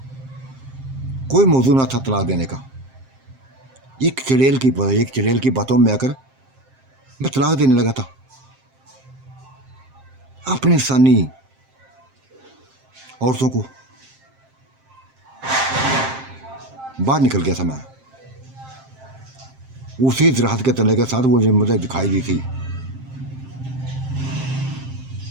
कोई मौजू ना था तलाक देने का। एक चिड़ैल की बातों में आकर मैं तलाक देने लगा था। अपनी इंसानी औरतों को बाहर निकल गया था मैं। उसी राहत के तले के साथ वो मुझे दिखाई दी थी,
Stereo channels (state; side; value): late; left; 7.6 ms